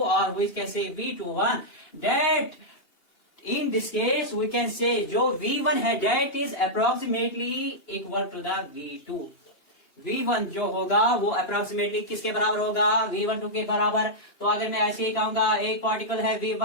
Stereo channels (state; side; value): late; right; 2.8 ms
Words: और we can say V21. that in this case we can say जो V1 है that is approximately equal to the V2. V1 जो होगा वो अप्रोक्सीमेटली किसके बराबर होगा? V12 के बराबर। तो अगर मैं ऐसे ही कहूंगा एक पार्टिकल है